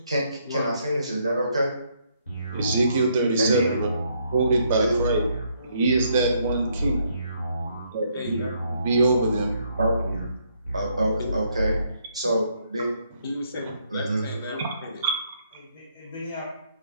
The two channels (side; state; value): both; inverted; correlation -0.72